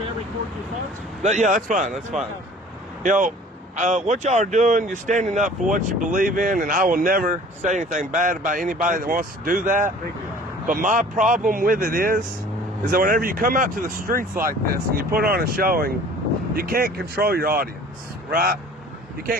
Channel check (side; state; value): both; normal; correlation 0.48